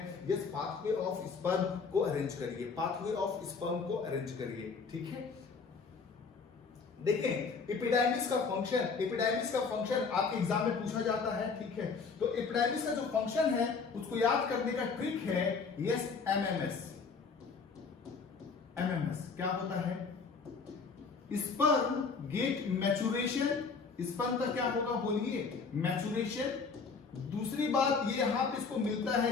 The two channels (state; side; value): quieter; right; 5.0 dB